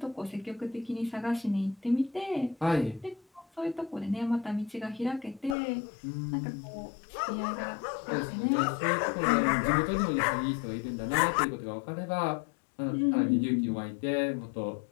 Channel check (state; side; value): drops out; right; at 5.6 s